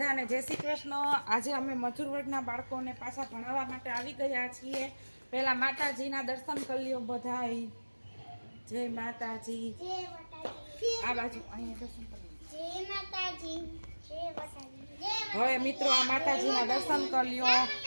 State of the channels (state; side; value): inverted; both; correlation -1.00